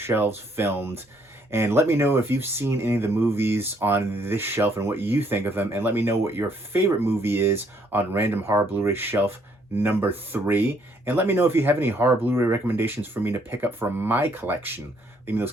filmed. And let me know if you've seen any of the movies on this shelf and what you think of them. And let me know what your favorite movie is on Random Horror Blu-ray Shelf number 3. And let me know if you have any horror Blu-ray recommendations for me to pick up from my collection. Leave me those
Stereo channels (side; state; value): both; normal; correlation 0.68